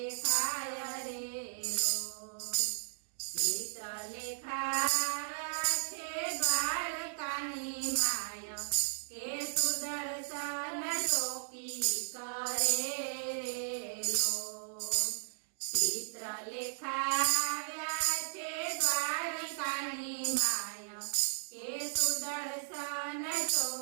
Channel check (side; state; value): left; silent; digital silence